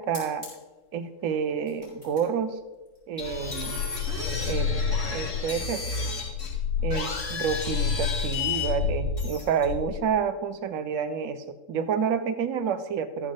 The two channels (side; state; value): right; late; 3.7 ms